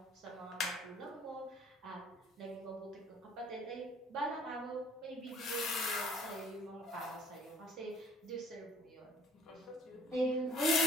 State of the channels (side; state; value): both; normal; correlation 0.55